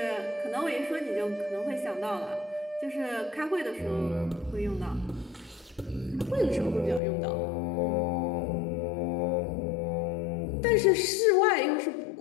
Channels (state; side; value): drops out; right; at 7.0 s